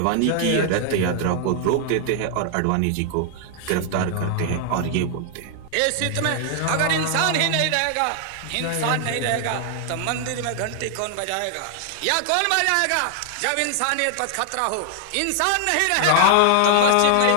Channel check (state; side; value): different; both; correlation 0.00